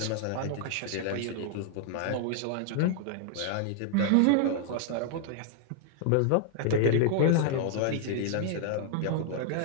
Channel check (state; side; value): different; both; correlation 0.00